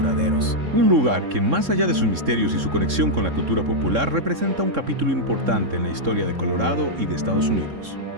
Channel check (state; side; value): late; left; 3.7 ms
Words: Un lugar que, más allá de sus misterios y su conexión con la cultura popular, representa un capítulo importante en la historia de Colorado y de Estados Unidos.